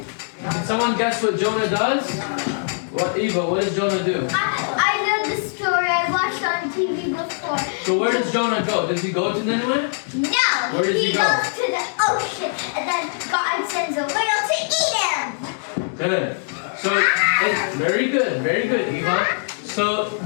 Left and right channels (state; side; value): silent; right; digital silence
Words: Can someone guess what Jonah does? What, Eva, what does Jonah do? I know the story. I watched on TV before. So where does Jonah go? Does he go to Nineveh? No. Where does he go? Goes to the ocean, and then God sends a whale to eat him. Good. So, very good, Eva. So